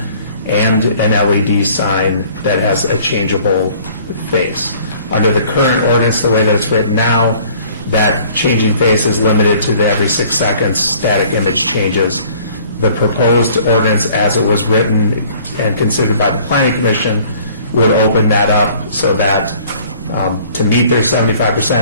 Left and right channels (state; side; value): inverted; both; correlation -0.54